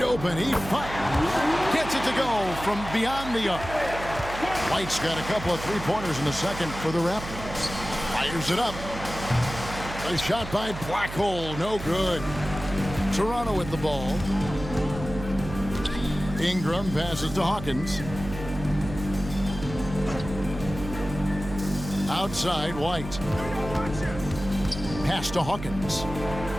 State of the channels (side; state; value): right; noise; hum, 10 dB below the sound